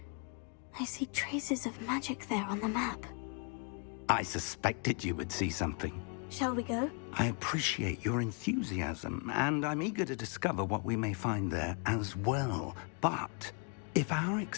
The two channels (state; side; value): quieter; right; 39.0 dB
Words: I see traces of magic there on the map. I suspected you would see something. Shall we go? I appreciate your enthusiasm, and I'm eager to discover what we may find there as well. But if our